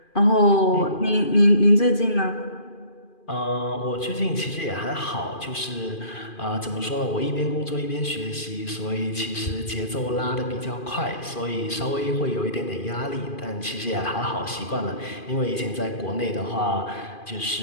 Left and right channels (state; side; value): late; right; 2.4 ms